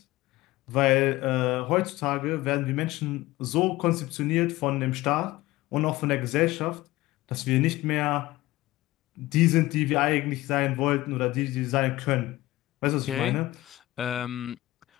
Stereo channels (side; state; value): right; quieter; 17.9 dB